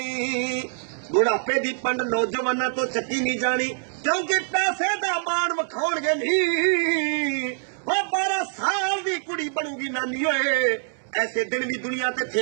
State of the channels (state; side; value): silent; left; 58 dB below the other